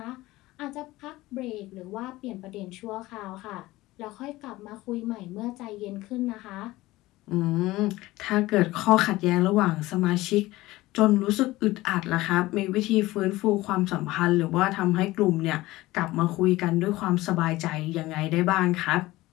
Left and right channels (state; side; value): quieter; right; 18.4 dB